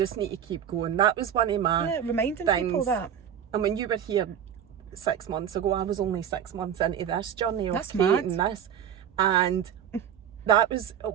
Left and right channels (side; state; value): left; quieter; 8.9 dB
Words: need to keep going. That was one of my reminding things. People that. And when you were here 6 months ago, I was only 6 months into this journey of That's mad. creating this. And that was